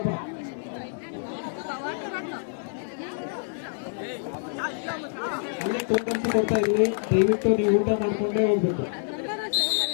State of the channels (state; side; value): silent; right; digital silence